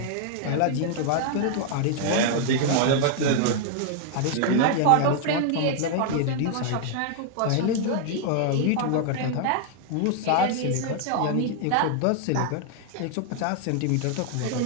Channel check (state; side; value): different; both; correlation 0.00